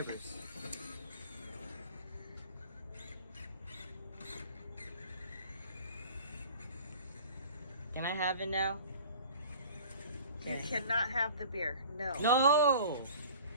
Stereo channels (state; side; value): inverted; both; correlation -0.44